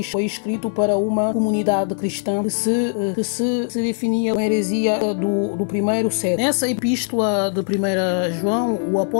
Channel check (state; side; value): silent; right; digital silence